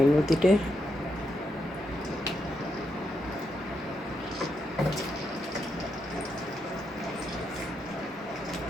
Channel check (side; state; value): both; normal; correlation 0.82